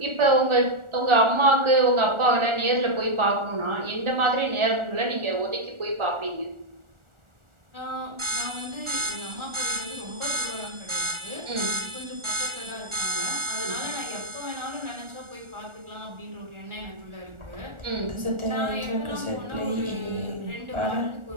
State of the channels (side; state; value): left; late; 1.4 ms